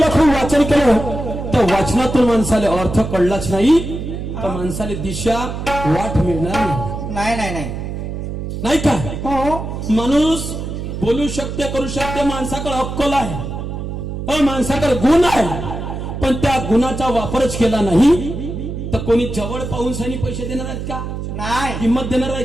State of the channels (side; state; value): right; noise; hum, 6 dB below the sound